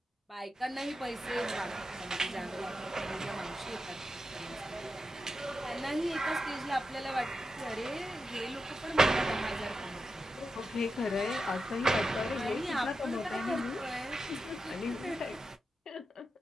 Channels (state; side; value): normal; both; correlation 0.89